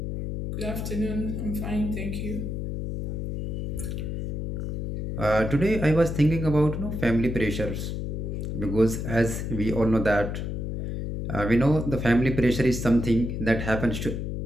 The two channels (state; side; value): noise; left; hum, 4 dB below the sound